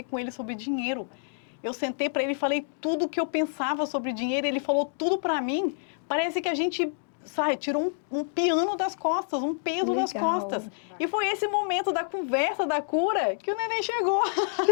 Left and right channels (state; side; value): silent; right; digital silence